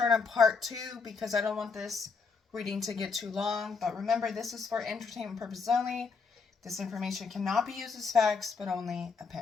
on part 2 because I don't want this reading to get too long. But remember, this is for entertainment purposes only. This information cannot be used as facts, but only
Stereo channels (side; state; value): right; quieter; 4.9 dB